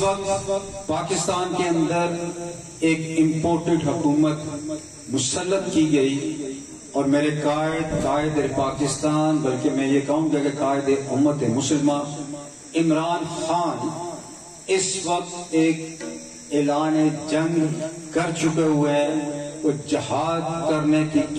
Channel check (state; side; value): identical; both; correlation 1.00